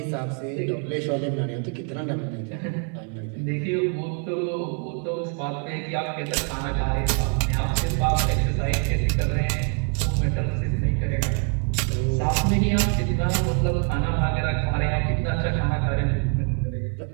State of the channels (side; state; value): left; quieter; 36.1 dB